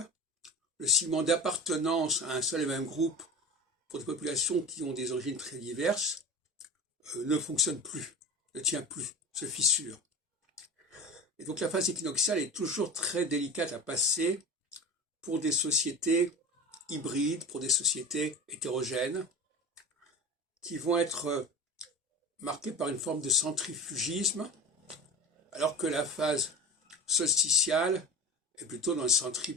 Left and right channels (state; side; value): normal; both; correlation 0.31